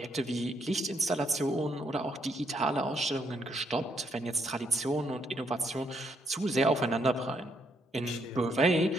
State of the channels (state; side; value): normal; both; correlation 0.73